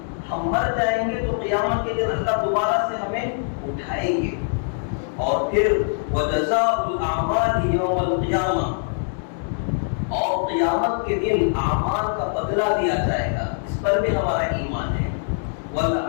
ہم مر جائیں گے تو قیامت کے دن اللہ دوبارہ سے ہمیں اٹھائیں گے۔ اور پھر وجزاء الاعمال یوم القیامہ، اور قیامت کے دن اعمال کا بدلہ دیا جائے گا، اس پر بھی ہمارا ایمان ہے۔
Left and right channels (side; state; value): right; silent; digital silence